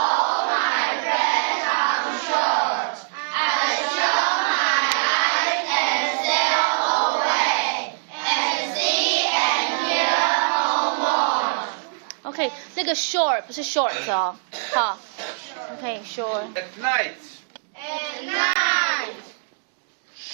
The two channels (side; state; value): left; silent; digital silence